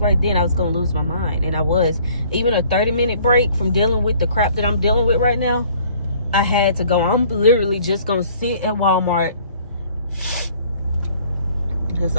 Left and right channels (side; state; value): both; inverted; correlation -0.56